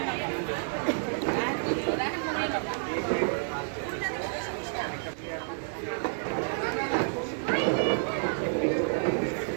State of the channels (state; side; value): silent; left; 58 dB below the other